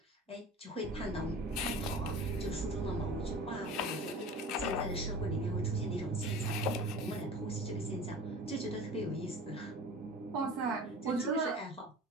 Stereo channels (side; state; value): both; normal; correlation 0.38